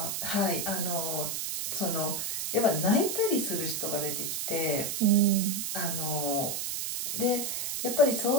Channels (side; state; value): right; noise; hiss, 2 dB below the sound